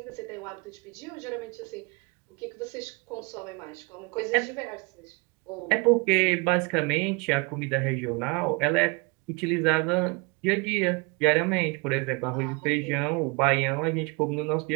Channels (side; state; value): left; quieter; 29.8 dB